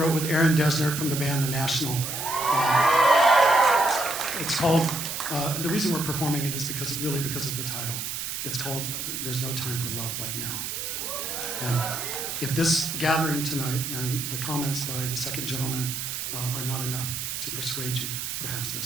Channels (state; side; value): noise; right; hiss, 4 dB below the sound